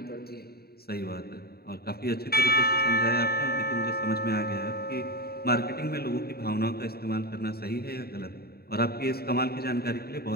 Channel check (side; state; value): right; late; 0.45 ms